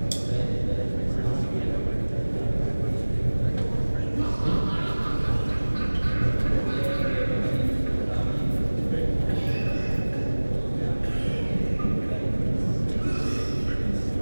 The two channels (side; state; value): both; inverted; correlation -1.00